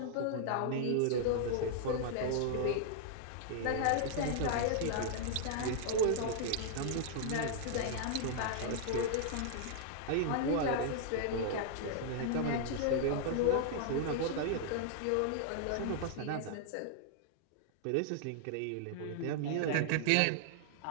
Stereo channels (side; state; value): both; different; correlation -0.01